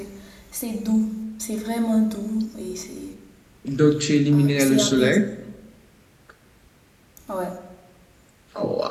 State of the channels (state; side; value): identical; both; correlation 1.00